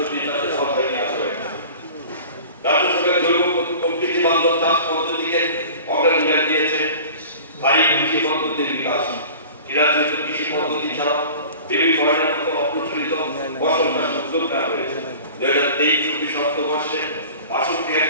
চাষের আওতায় নিয়ে আসা হয়েছে। রাজ্য সরকার জৈব প্রকৃতি বান্ধব চাষ পদ্ধতিকে অগ্রাধিকার দিয়েছে। স্থায়ী কৃষি পদ্ধতির বিকাশ। রাজ্যে কৃষি পদ্ধতি ছাড়া বেবি ফরেনের মতো অপ্রচলিত ফসল চাষ উদ্যোগ নেওয়া হয়েছে। 2023-24 অর্থবর্ষে 62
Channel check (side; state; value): both; inverted; correlation -0.41